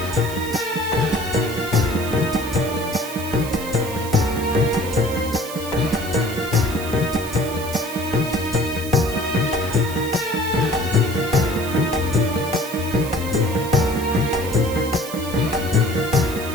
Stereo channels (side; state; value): right; noise; hiss, 12 dB below the sound